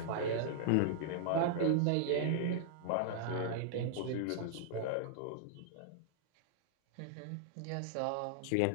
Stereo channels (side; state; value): both; different; correlation -0.01